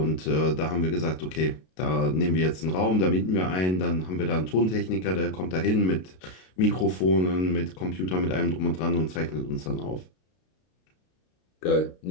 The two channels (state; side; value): late; right; 32 ms